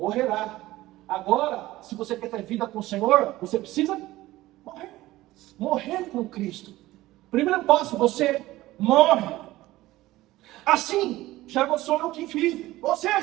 Agora, se você quer ter vida com o Senhor, você precisa morrer. Morrer com Cristo. Primeiro passo, você morre. Assim, já não sou eu quem vive. Ou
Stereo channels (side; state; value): left; quieter; 17.0 dB